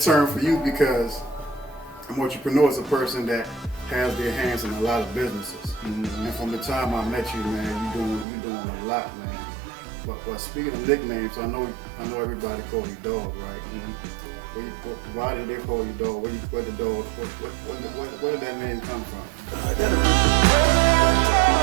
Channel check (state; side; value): drops out; left; at 8.2 s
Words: term for you because an entrepreneur is a person that has their hands in a lot of businesses. Mm-hmm. And from the time I met you, man, you doing a lot, man. But speaking of nicknames, I know everybody call you Dog, right? Mm-hmm. Why did they call you Dog? Where the dog? Where did that name come from?